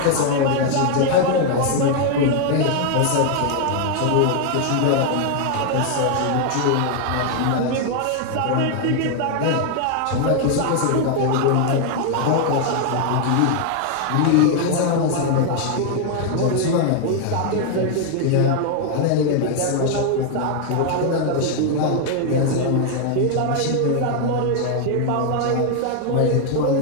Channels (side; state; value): both; different; correlation 0.00